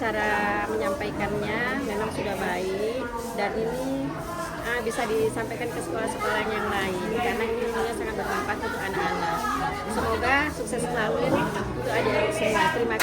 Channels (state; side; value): identical; both; correlation 1.00